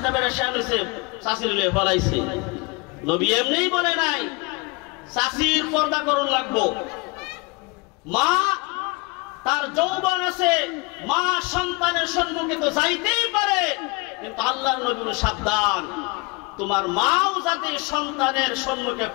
বেড়ে শ্যান হয়েছে, শাশির লিয়ে ফলাইছে। নবী এমনি বলে নাই শাশির পর্দা করন লাগবো। মা তার যৌবন আছে, মা সন্তানের সম্মুখে তো যাইতেই পারে, কিন্তু আল্লাহর নবী সাবধান, তোমার মাও যাতে সন্তানের সম্মুখে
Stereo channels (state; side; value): quieter; right; 27.5 dB